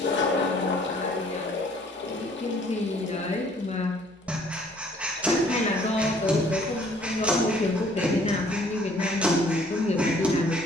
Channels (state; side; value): normal; both; correlation 0.59